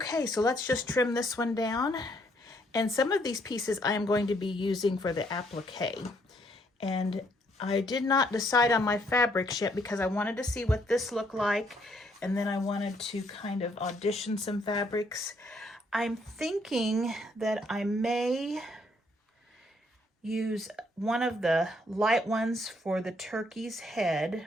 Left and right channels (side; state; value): both; normal; correlation 0.69